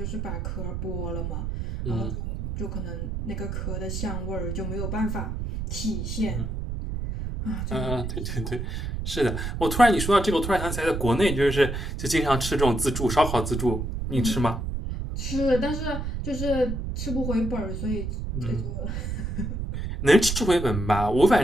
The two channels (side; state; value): right; noise; rumble, 4 dB below the sound